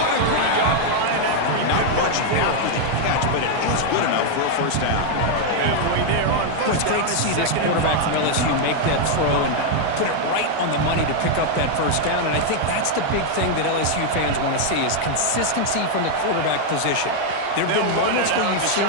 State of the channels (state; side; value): different; both; correlation 0.00